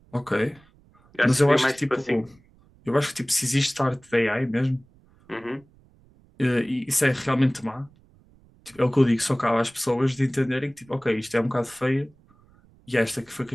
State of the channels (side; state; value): right; noise; rumble, 30 dB below the sound